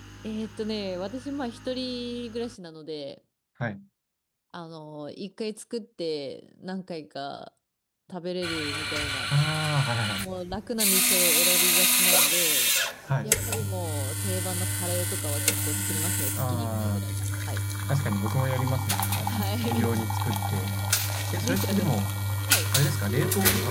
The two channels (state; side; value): identical; both; correlation 1.00